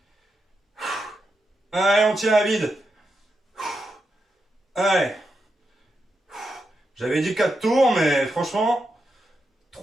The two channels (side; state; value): both; normal; correlation 0.86